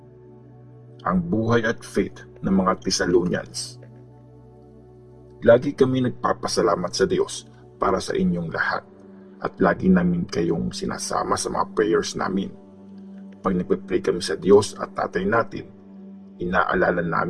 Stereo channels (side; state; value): both; identical; correlation 1.00